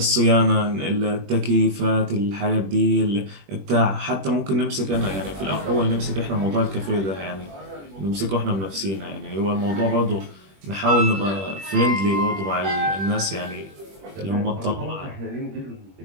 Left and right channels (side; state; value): left; late; 21 ms